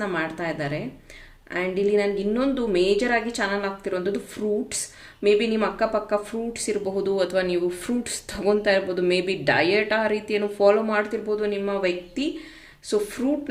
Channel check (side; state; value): both; identical; correlation 1.00